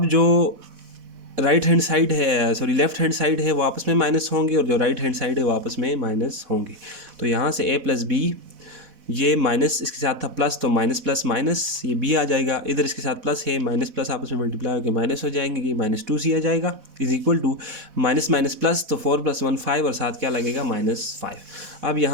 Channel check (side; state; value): left; late; 4.1 ms